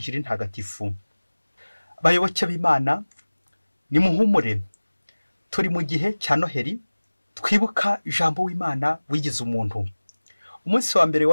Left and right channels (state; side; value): inverted; both; correlation -1.00